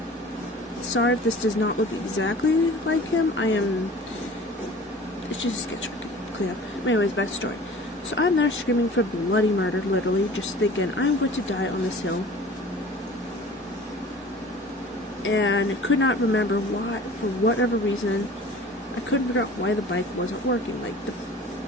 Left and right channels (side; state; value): both; normal; correlation 0.43